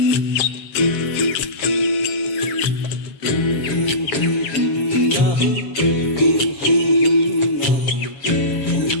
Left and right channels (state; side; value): late; right; 7.3 ms